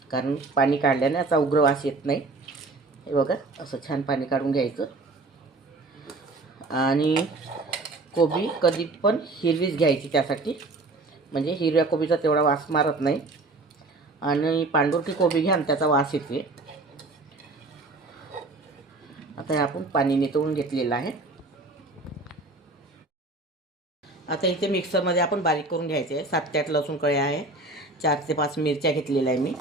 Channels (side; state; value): left; quieter; 3.2 dB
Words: कारण पाणी काढल्याने याचा उग्र वास येत नाही. हे बघा, असं छान पाणी काढून घ्यायचं. आणि कोबी कधी पण हिरवीच घ्यायची, त्यासाठी म्हणजे हिरव्या कोबीचा तेवढा वास मारत नाही. आणि पांढुरकी कोबी घ्या, त्याचा वास येते. आता आपण पाणी नितळून घेतलेलं आहे. आता इथे मिक्सरमध्ये आपण बारीक करून घ्यायचे आहे. 7 ते 8 लसूण कळ्या आहे, 4 ते 5 मिरच्या घेतलेल्या आहे मी.